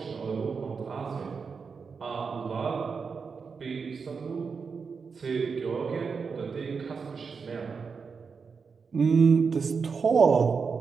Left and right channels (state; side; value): quieter; left; 5.4 dB